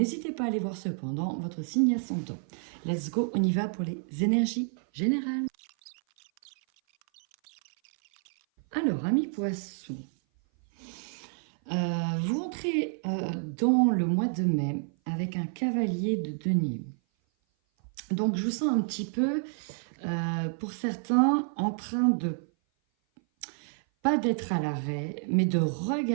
pas à aller voir cependant votre signe ascendant. Let's go, on y va pour les énergies générales. Alors, amis poissons, vous entrez dans le mois de mai avec un cavalier de denier. Donc, je vous sens un petit peu, pour certains, en train de, pas d'être à l'arrêt, mais de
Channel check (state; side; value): silent; left; 56 dB below the other